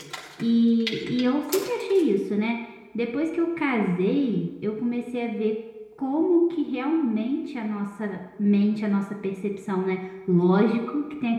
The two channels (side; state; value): both; identical; correlation 1.00